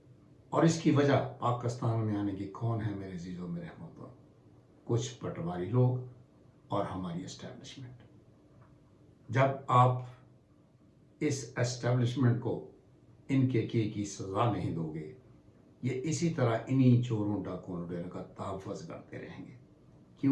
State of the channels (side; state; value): both; identical; correlation 1.00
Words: اور اس کی وجہ پاکستان میں آنے کی کون ہے میرے عزیزوں، میرے ہموطنوں؟ کچھ پٹواری لوگ اور ہماری اسٹیبلشمنٹ۔ جب آپ اس اسٹیبلشمنٹ کو ان کے کیے کی سزا نہیں دو گے، یہ اسی طرح انہی چوروں ڈاکوں لٹیروں کا تحفظ کرتے رہیں گے،